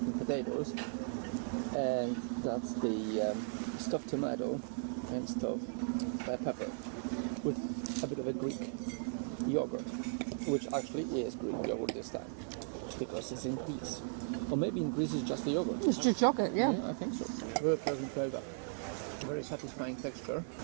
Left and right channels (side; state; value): left; silent; digital silence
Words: potatoes, and that's the stuffed tomato and stuffed pepper with a bit of a Greek yogurt, which actually is Greek yogurt this time because it's in Greece. Or maybe in Greece it's just the yogurt. It's just yogurt, yeah. Yeah, I think so. Very pleasant flavor. Very satisfying texture.